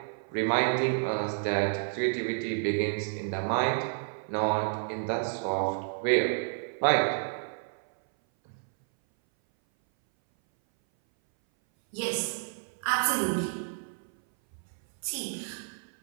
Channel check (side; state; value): left; silent; 58 dB below the other